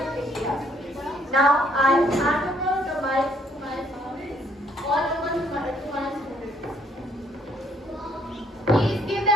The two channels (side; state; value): both; normal; correlation 0.66